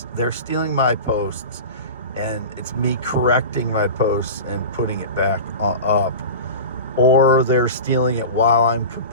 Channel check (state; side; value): inverted; both; correlation -0.30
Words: they're stealing my posts. And it's me correcting my posts and putting it back up, or they're stealing it while I'm